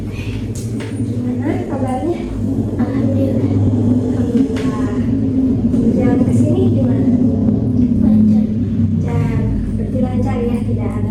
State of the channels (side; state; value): both; identical; correlation 1.00